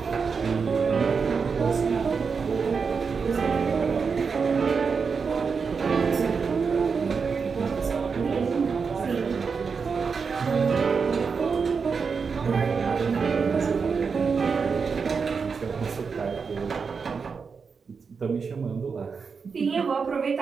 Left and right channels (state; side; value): quieter; left; 5.5 dB